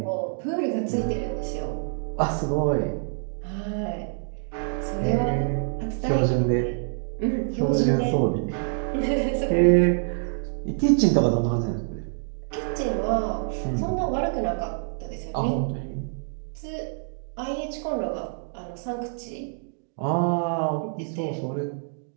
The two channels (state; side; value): silent; left; digital silence